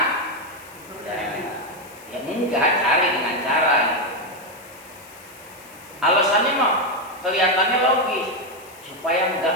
Ya enggak, cari dengan cara. Alasannya mah kelihatannya logis, supaya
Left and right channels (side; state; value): left; noise; hiss, 22 dB below the sound